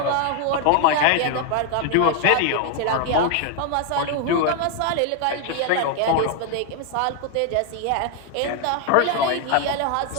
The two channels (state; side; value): different; both; correlation 0.00